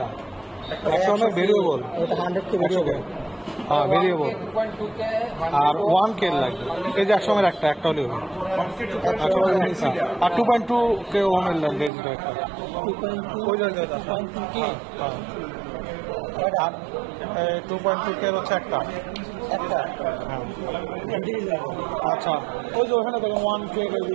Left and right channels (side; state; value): left; drops out; at 11.9 s